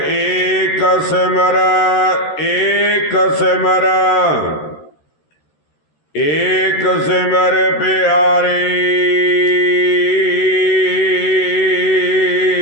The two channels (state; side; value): late; right; 13 ms